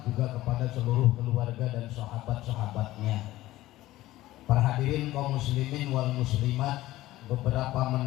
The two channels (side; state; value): right; quieter; 16.3 dB